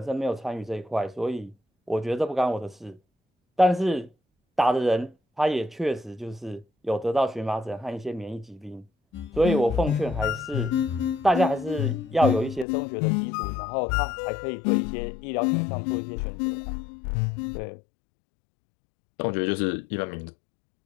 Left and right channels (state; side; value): drops out; right; at 12.7 s